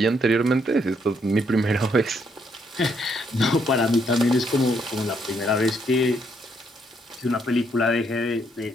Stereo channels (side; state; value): both; normal; correlation 0.73